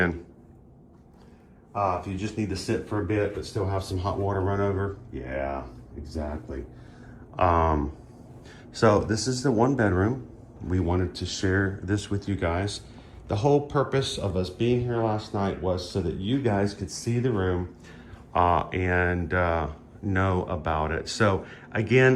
If you just need to sit for a bit but still have some hot water run over. Yeah, exactly. So this is the 1 bedroom. We wanted to share this with you guys. The whole purpose of us being here last night was so that you guys could see the room and know about it. So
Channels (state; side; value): identical; both; correlation 1.00